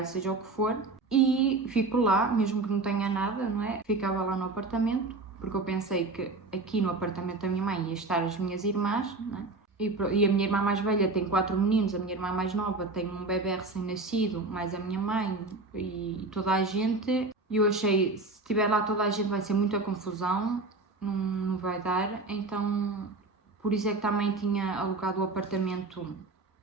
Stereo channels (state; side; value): quieter; left; 3.4 dB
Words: seja o que for. E fico lá, mesmo que não tenha nada, não é? Ficava lá no apartamento, porque eu pensei que aqui no apartamento da minha mãe ia estar as minhas irmãs, não é? E a minha irmã mais velha tem 4 meninos, a minha irmã mais nova tem um bebê recém-nascido, mais a minha mãe e toda a gente. E eu achei, se estiver lá toda a gente vai ser muita confusão, não vai dar. Então, por isso é que também tinha alugado o apartamento